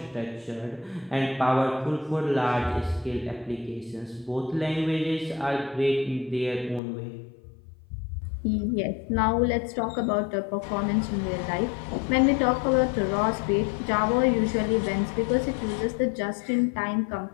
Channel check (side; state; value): right; drops out; at 6.8 s